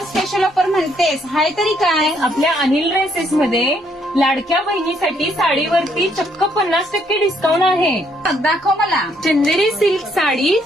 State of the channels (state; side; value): normal; both; correlation 0.70